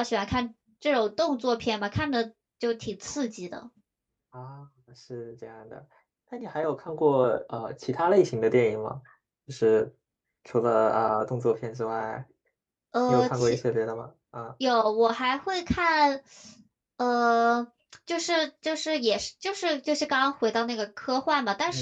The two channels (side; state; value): both; identical; correlation 1.00